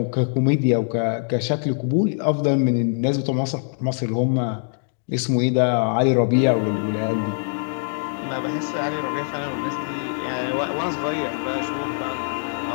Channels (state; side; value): silent; right; digital silence